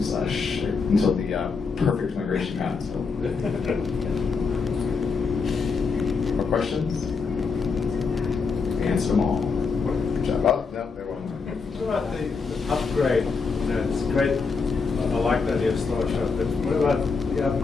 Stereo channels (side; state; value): right; quieter; 4.9 dB